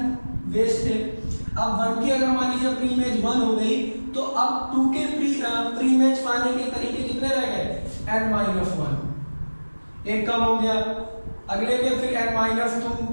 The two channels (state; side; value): inverted; both; correlation -1.00